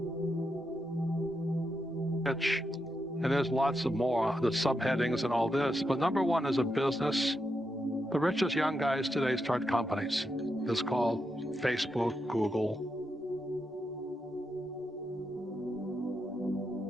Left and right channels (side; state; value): both; normal; correlation 0.84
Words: And there's lots of more, the subheadings and all this. But number 1 is a business. The richest young guys today start companies. It's called Facebook, Google,